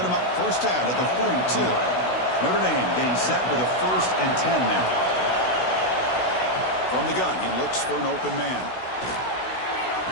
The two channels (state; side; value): late; right; 16 ms